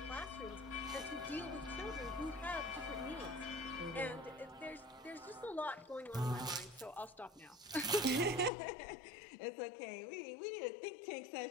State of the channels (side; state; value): right; drops out; at 8.5 s